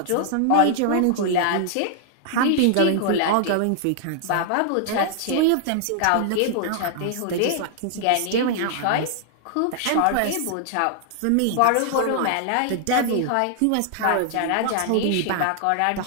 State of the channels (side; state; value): both; different; correlation -0.01